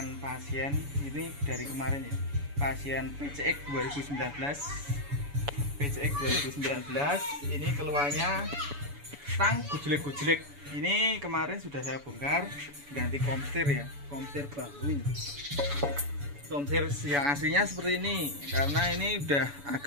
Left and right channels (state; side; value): late; left; 7.0 ms